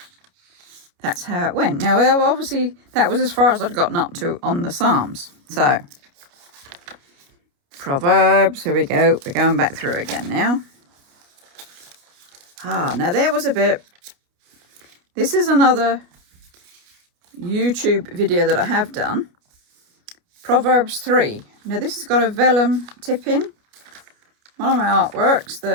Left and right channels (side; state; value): left; late; 29 ms